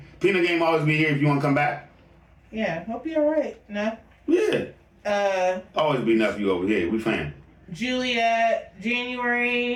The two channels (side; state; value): both; identical; correlation 1.00